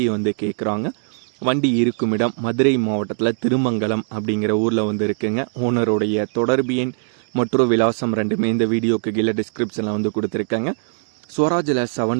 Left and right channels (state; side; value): silent; left; digital silence